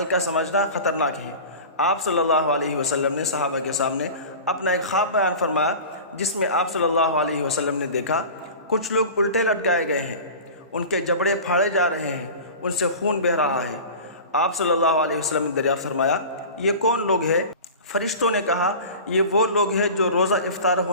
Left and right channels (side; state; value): both; inverted; correlation -0.36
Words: سمجھنا خطرناک ہے۔ آپ صلی اللہ علیہ وسلم نے صحابہ کے سامنے اپنا ایک خواب بیان فرمایا، جس میں آپ صلی اللہ علیہ وسلم نے دیکھا کچھ لوگ الٹے لٹکائے گئے ہیں، ان کے جبڑے پھاڑے جا رہے ہیں، ان سے خون بہہ رہا ہے۔ آپ صلی اللہ علیہ وسلم نے دریافت فرمایا، یہ کون لوگ ہیں؟ فرشتوں نے کہا، یہ وہ لوگ ہیں جو روزہ افطار